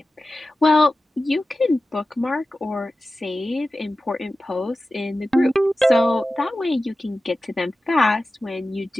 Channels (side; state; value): both; normal; correlation 0.94